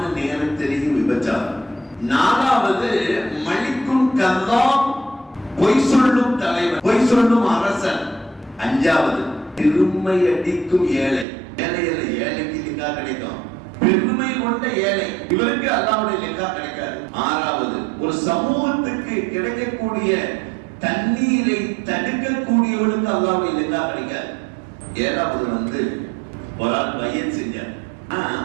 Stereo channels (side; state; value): left; drops out; at 11.2 s